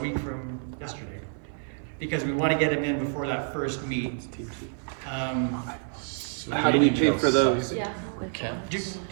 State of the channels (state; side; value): silent; left; 56 dB below the other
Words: week from yesterday, because we want to get them in before that first meet. How do we pay for those? Yeah. Do you